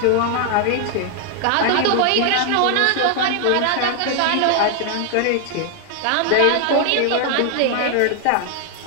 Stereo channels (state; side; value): different; both; correlation 0.00